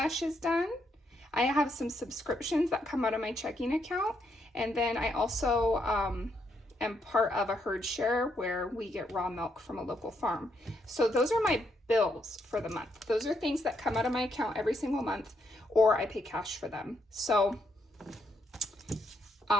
done. I have some subscriptions that come out of my checking account. And then I also am part of a herd share where we get raw milk from a local farm. So those are my bills for the month. Those are things that come out of my account every single month, or I pay cash for them. So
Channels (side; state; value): both; normal; correlation 0.77